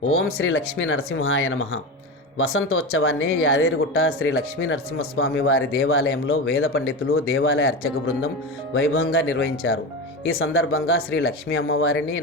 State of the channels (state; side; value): normal; both; correlation 0.22